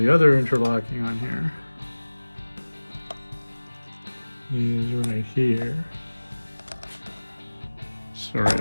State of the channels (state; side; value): inverted; both; correlation -1.00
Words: other interlocking on here is right here. Sorry